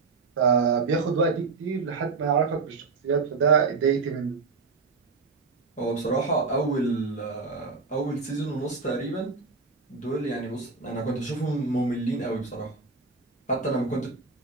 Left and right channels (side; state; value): left; quieter; 4.4 dB